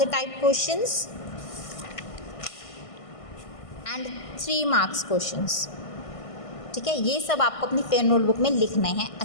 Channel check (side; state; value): right; late; 1.5 ms